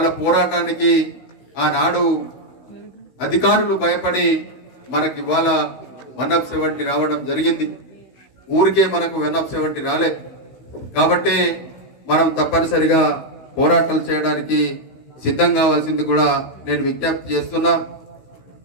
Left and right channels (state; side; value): late; right; 16 ms